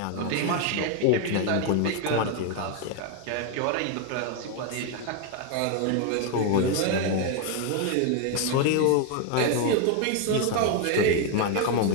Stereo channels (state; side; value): different; both; correlation 0.01